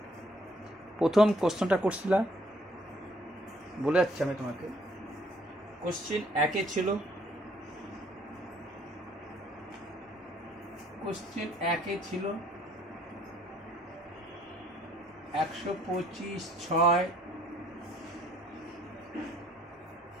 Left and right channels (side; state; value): both; normal; correlation 0.63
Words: প্রথম কোশ্চেনটা করছিলাম, বলে যাচ্ছি আমি তোমাকে। কোশ্চেন 1-এ ছিল, কোশ্চেন 1-এ ছিল 125/6